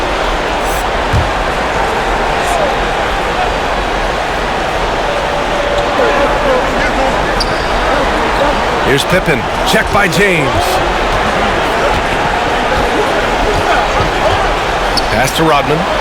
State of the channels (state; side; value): identical; both; correlation 1.00